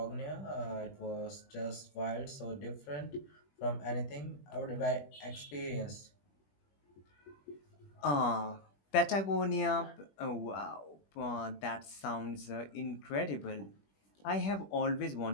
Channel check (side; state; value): right; late; 21 ms